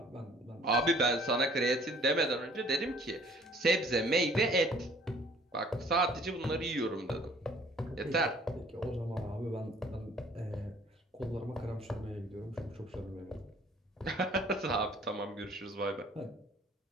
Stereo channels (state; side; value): normal; both; correlation 0.56